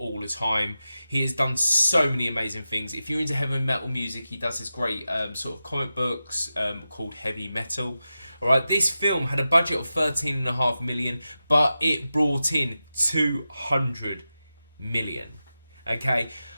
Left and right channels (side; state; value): both; inverted; correlation -0.92